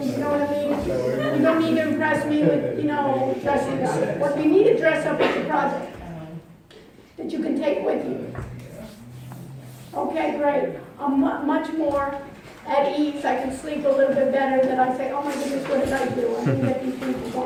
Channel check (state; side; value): identical; both; correlation 1.00